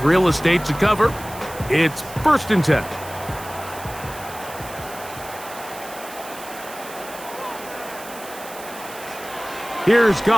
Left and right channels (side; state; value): right; noise; hiss, 15 dB below the sound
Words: real estate to cover. It's 1st and 10. Here's